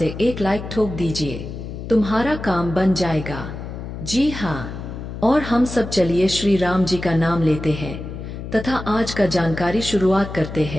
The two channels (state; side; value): noise; left; hum, 9 dB below the sound